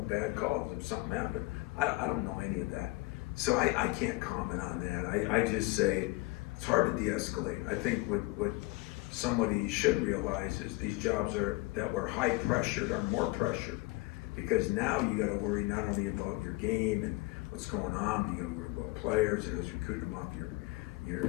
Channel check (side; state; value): right; quieter; 22.1 dB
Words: bad calls, if something happened. I don't know any of that. So I can't comment on that. I just say it's hard to de-escalate. I think what somebody should realize is these jobs that were high pressured are more pressured, because now you got to worry not only about your game and what's going on, you got to worry about players and who's recruiting them off